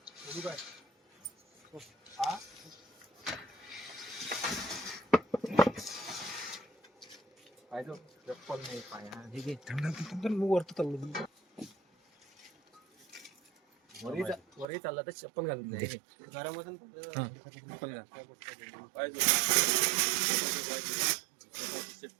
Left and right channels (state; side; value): drops out; left; at 14.7 s